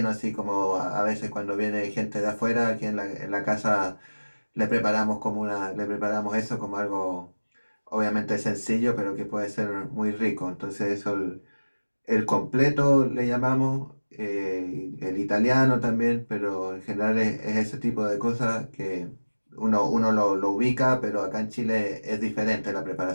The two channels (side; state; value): both; inverted; correlation -1.00